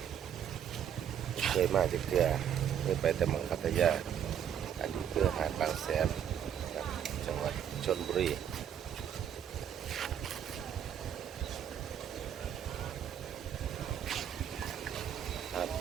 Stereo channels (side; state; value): left; quieter; 9.2 dB